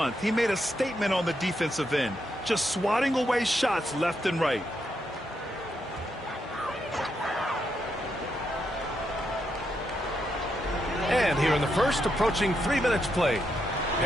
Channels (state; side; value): normal; both; correlation 0.81